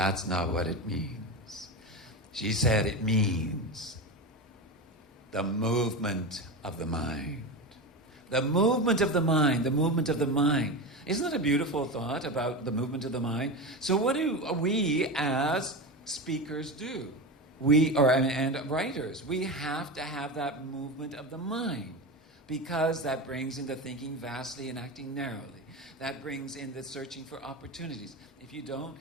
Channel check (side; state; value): both; normal; correlation 0.21